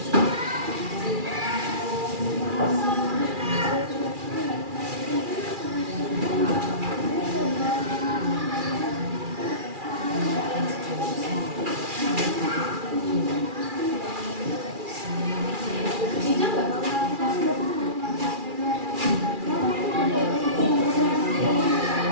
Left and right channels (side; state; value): left; late; 2.4 ms